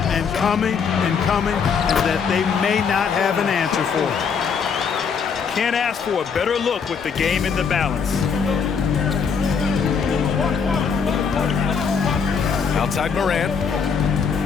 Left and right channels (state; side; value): quieter; right; 6.1 dB